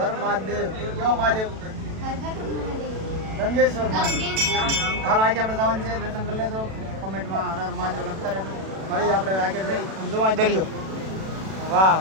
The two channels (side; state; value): left; late; 37 ms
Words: હર મહાદેવ. કેવો મહાદેવ? हर हर महादेव. ગંગેશ્વર મહાદેવ. હાલો આજે આપણે જવાનું છે. દર્શન કરી લેજો. કમેન્ટમાં હર હર મહાદેવ લખતા રહેજો. ફરી આપણે આગળ જઈ જોવા દરિયો. વાહ